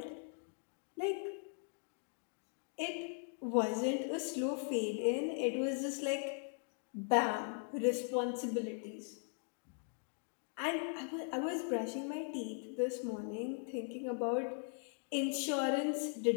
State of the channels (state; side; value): silent; right; 51 dB below the other